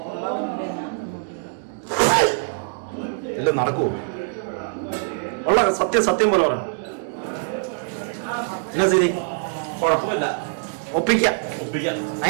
ഇല്ല നടക്കൂ. ഉള്ള സത്യം പോലെ പറയണം. എന്നാ ശരി കുഴപ്പമില്ല. ഒപ്പിക്കാം.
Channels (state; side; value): silent; left; digital silence